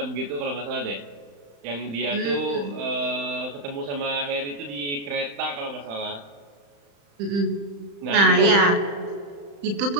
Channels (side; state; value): left; late; 35 ms